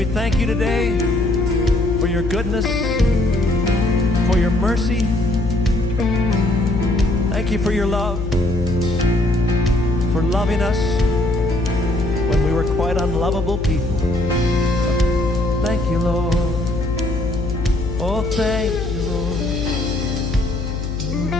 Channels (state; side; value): noise; left; hum, 4 dB below the sound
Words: we thank you today for your goodness, for your mercy. Thank you for your love, for loving us when we were quite unlovable people. Thank you, Lord. Oh, thank you, Lord.